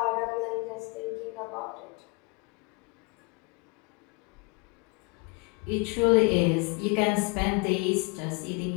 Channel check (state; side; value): quieter; right; 29.9 dB